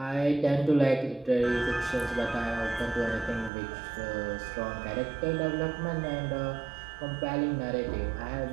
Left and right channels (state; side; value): drops out; left; at 3.5 s